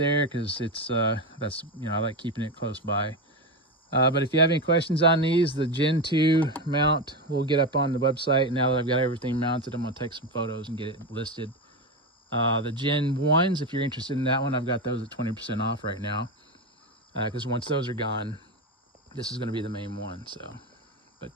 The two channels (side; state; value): both; normal; correlation 0.16